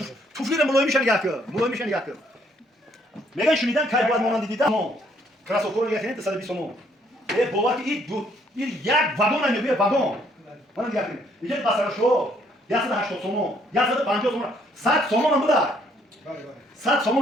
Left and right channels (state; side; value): normal; both; correlation 0.67